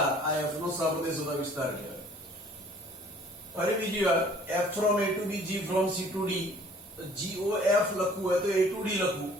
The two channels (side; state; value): both; normal; correlation 0.54